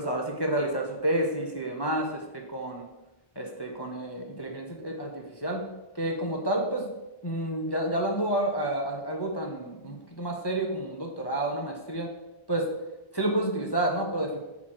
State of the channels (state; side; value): late; right; 1.1 ms